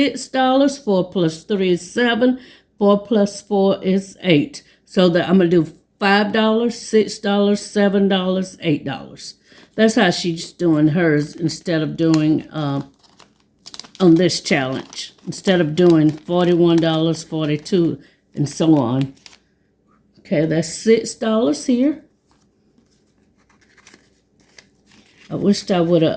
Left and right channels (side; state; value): both; identical; correlation 1.00